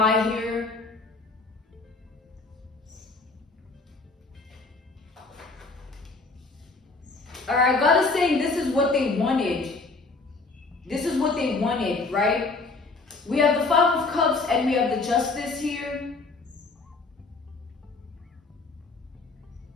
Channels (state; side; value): quieter; right; 3.7 dB